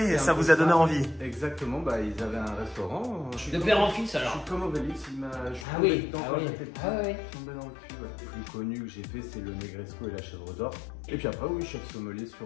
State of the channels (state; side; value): drops out; right; at 5.7 s